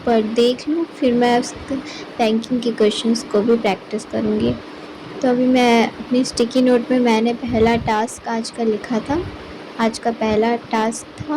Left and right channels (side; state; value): both; identical; correlation 1.00